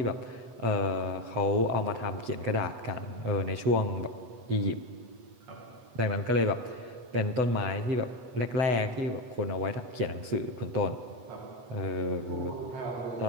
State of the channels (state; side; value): late; left; 8.1 ms